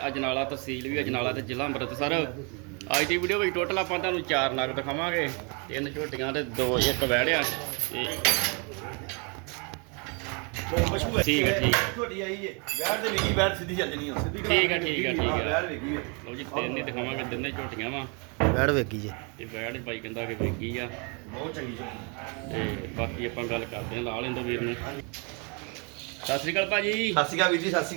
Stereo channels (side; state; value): left; quieter; 34.3 dB